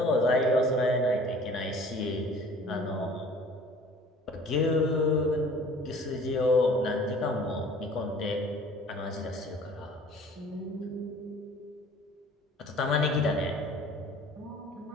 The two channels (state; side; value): normal; both; correlation 0.49